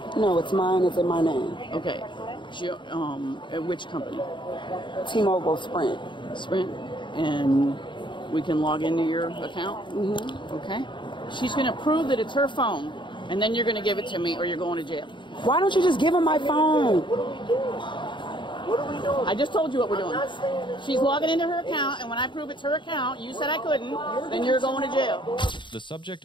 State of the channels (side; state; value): right; late; 0.23 ms